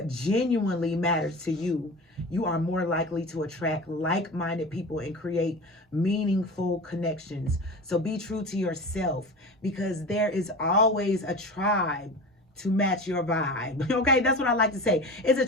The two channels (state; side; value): normal; both; correlation 0.32